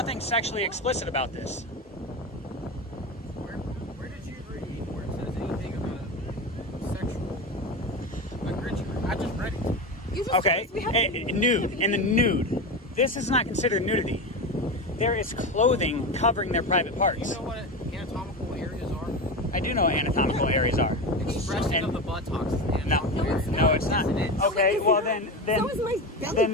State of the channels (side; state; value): both; normal; correlation 0.21